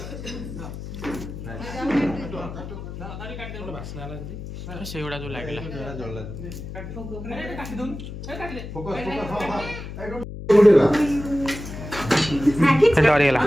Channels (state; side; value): noise; left; hum, 10 dB below the sound